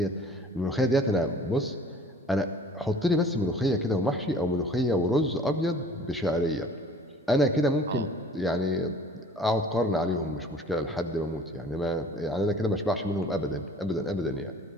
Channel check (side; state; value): both; normal; correlation 0.48